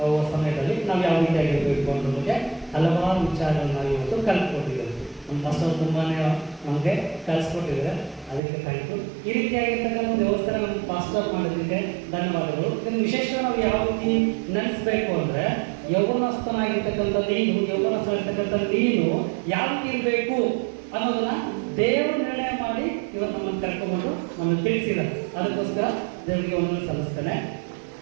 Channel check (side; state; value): left; drops out; at 8.4 s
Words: ಸಮಯದಲ್ಲಿ ನಾವು ಯಾವ ರೀತಿಯಾಗಿರಬೇಕು ಅನ್ನೋದಕ್ಕೆ ಹಲವಾರು ವಿಚಾರಗಳನ್ನು ನಾವು ಇವತ್ತು ಕಲ್ತ್ಕೊಟ್ಟಿದ್ದೇವೆ. ನಮ್ಮ ಮಾಸ್ಟರ್ ತುಂಬಾ ನಮಗೆ ಕಲಿಸ್ಕೊಟ್ಟಿದ್ದಾರೆ, ಅದಕ್ಕೆ ಥ್ಯಾಂಕ್ ಯು. ಈ ರೀತಿಯಾಗಿರ್ತಕ್ಕಂಥ ವ್ಯವಸ್ಥೆ ನಮ್ಮ ಮಾಸ್ಟರ್ ಮಾಡೋದಕ್ಕೆ ಧನ್ಯವಾದಗಳು. ಇದನ್ನು ವಿಶೇಷವಾಗಿ ನಾವು ಯಾವ ರೀತಿ ನೆನೆಸ್ಬೇಕು ಅಂದರೆ, ಯೌವನಸ್ಥನಾಗಿರ್ತಕ್ಕಂಥ ನೀನು ಯಾವ ರೀತಿ ಇರಬೇಕು ಅನ್ನೋದನ್ನ ದೇವರು ನಿರ್ಣಯ ಮಾಡಿ ಇವತ್ತು ನಮ್ಮನ್ನು ಕರ್ಕೊಂಡ್ಬಂದು ನಮಗೆ ತಿಳಿಸಿದ್ದಾರೆ. ಅದಕ್ಕೋಸ್ಕರ ದೇವರಿಗೆ ಒಂದು ಸಲ್ಲಿಸ್ತೇನೆ.